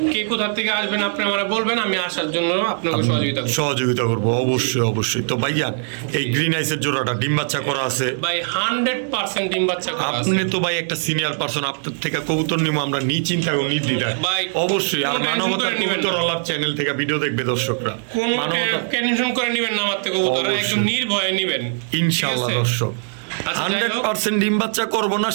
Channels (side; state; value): left; silent; digital silence